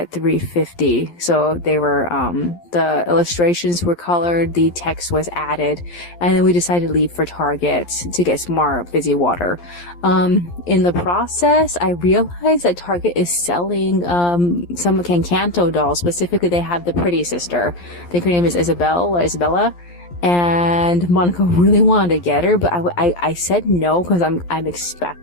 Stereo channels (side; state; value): right; late; 11 ms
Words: 3:50. So they were, the illustrations were colored, the text was added, and then we decided to leave for Target to get some more fizzy water. In the process, I realized that Target is selling, some Cancanto dolls. Specifically, they have the Pretty Sister. I think her name is Isabella. And Monica really wanted to get her, but I said no, because I'm